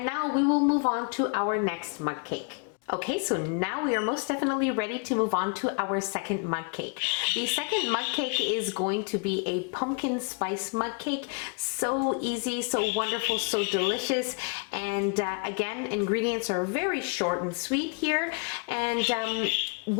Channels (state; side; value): quieter; right; 36.6 dB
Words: now we will move on to our next mug cake. Okay, so now we are most definitely ready to move on to our second mug cake. The second mug cake is going to be a pumpkin spice mug cake. So easy, so wonderful, so delicious. And again, ingredients are very short and sweet here. And